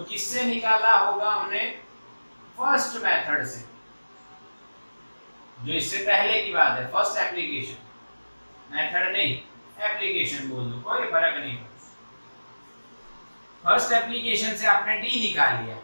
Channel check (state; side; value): inverted; both; correlation -1.00